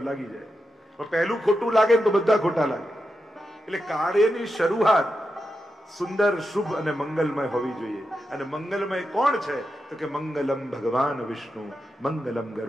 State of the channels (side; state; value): both; normal; correlation 0.87